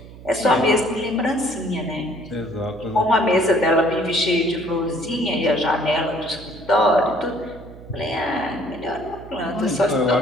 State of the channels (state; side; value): noise; right; hum, 17 dB below the sound